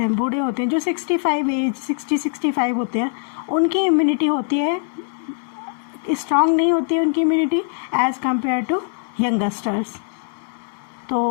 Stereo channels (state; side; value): silent; right; digital silence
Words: बूढ़े होते हैं, जो 60-65 होते हैं, उनकी इम्यूनिटी होती है स्ट्रांग नहीं होती है उनकी immunity as compare to youngsters.